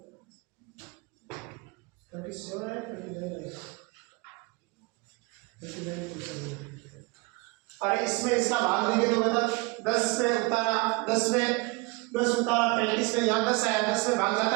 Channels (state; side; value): quieter; left; 25.9 dB